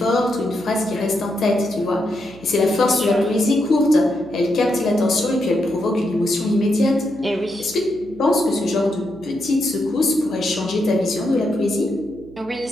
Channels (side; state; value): right; noise; hum, 22 dB below the sound